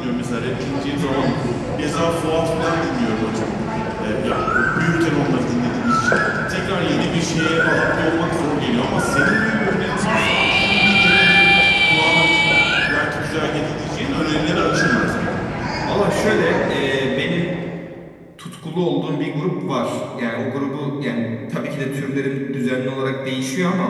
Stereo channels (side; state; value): both; identical; correlation 1.00